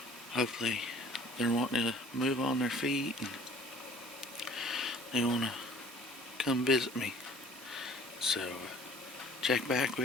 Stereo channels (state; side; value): normal; both; correlation 0.52